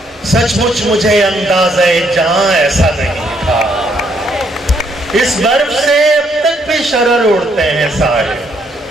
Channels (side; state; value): both; normal; correlation 0.71